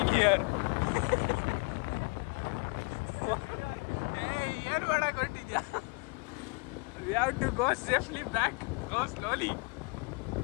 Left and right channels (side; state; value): right; quieter; 31.4 dB